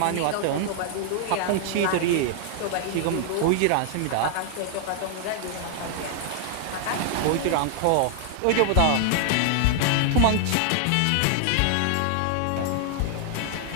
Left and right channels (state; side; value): different; both; correlation 0.00